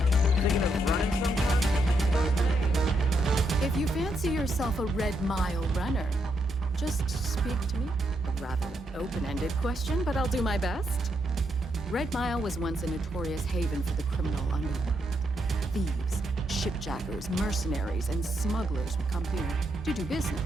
If you fancy yourself a Red Mile runner, just speak to me. A rather open-ended question, but I'll do my best. Red Mile was once a notorious haven for the criminal underworld. Thieves, shipjackers, mercenaries, and smugglers would come here to do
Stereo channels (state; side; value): normal; both; correlation 0.79